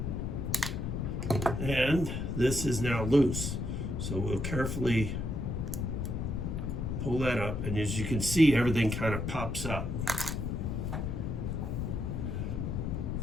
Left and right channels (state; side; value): noise; left; rumble, 2 dB below the sound